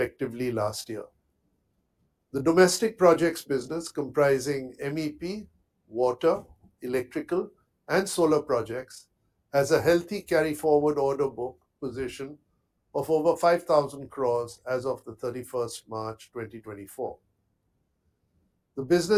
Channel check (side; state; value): both; identical; correlation 1.00